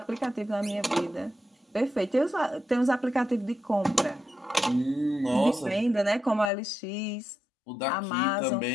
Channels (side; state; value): right; drops out; at 6.5 s